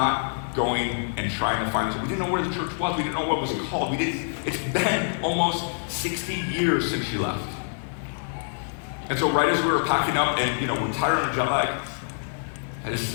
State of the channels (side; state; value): right; silent; digital silence